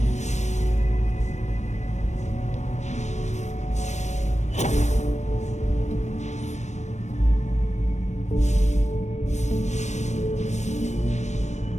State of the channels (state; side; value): late; right; 0.34 ms